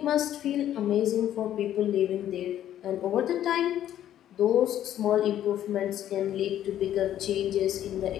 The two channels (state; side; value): quieter; right; 11.5 dB